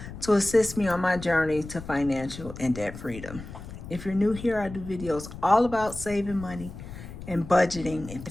to assist me on my journey to financial and debt freedom. If you're new here, I do videos all about saving money and budgeting.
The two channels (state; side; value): noise; left; rumble, 12 dB below the sound